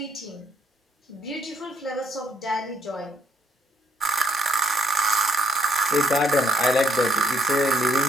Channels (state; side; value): normal; both; correlation 0.66